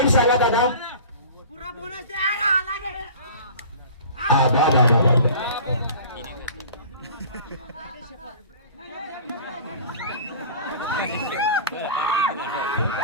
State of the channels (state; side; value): inverted; both; correlation -0.41